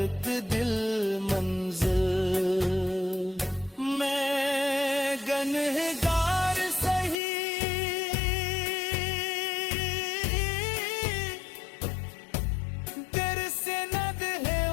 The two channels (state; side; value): drops out; right; at 7.2 s